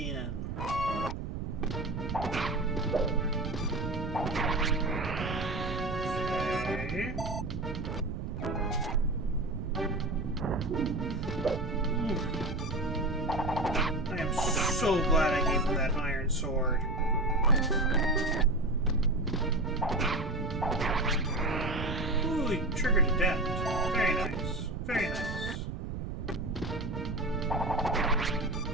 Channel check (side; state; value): right; noise; rumble, 5 dB below the sound